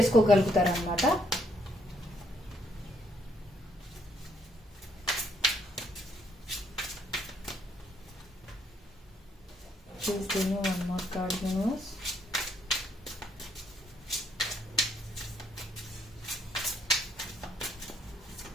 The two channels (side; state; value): both; normal; correlation 0.70